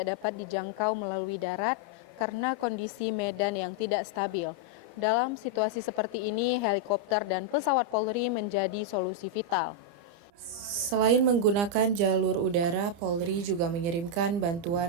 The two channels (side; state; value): left; late; 30 ms